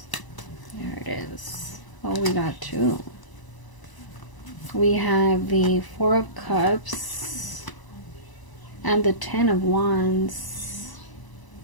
it is. Oh, we got 2. We have the 4 of Cups and the 10 of Wands.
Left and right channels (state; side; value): late; right; 1.0 ms